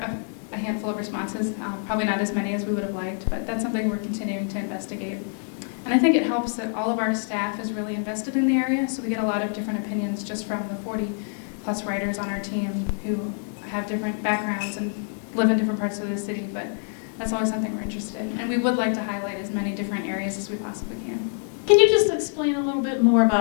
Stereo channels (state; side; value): silent; right; 55 dB below the other